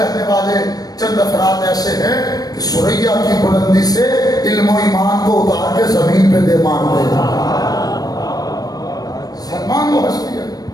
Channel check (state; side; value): late; right; 0.19 ms